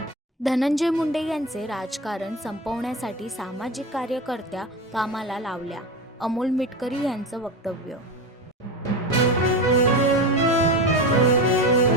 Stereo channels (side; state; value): both; normal; correlation 0.23